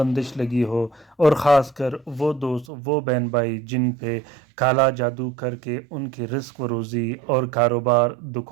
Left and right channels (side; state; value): left; drops out; at 2.7 s